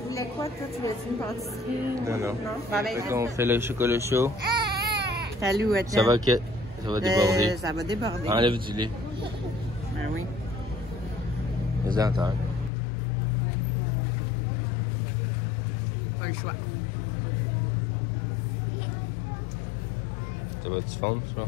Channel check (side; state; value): right; drops out; at 12.7 s